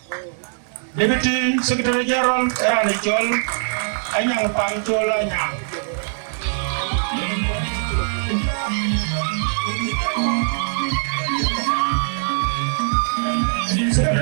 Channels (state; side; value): silent; left; digital silence